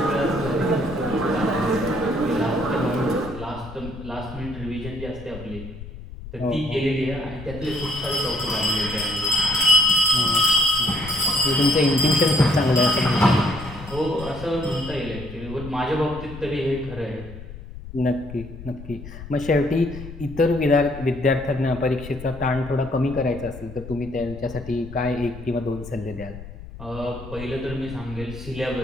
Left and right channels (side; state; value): left; noise; rumble, 13 dB below the sound